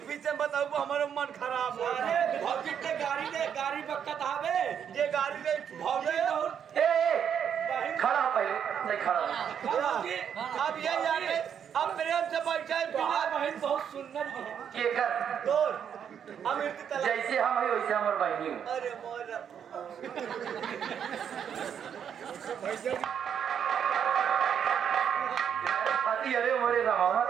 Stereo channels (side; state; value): left; quieter; 8.2 dB